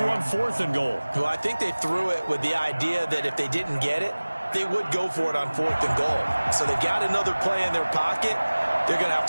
on 4th and goal. Well, I think they threw it with the idea that if they didn't get it, they would go for it on 4th and goal. So they got another play in their pocket. They're going to have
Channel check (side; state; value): both; inverted; correlation -1.00